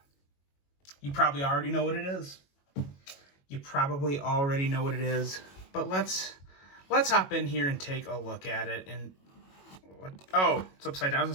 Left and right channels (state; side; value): late; right; 21 ms